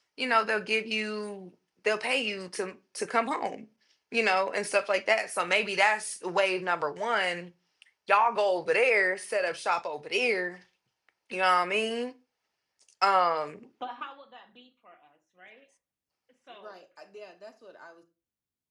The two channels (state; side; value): identical; both; correlation 1.00